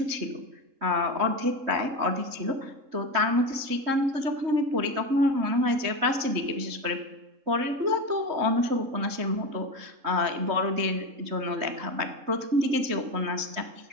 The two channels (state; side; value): late; left; 3.2 ms